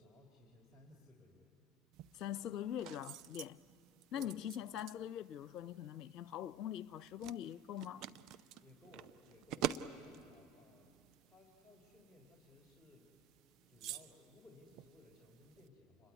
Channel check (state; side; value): normal; both; correlation 0.32